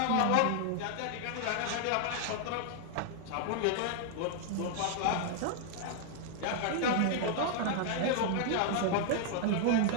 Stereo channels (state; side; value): different; both; correlation 0.00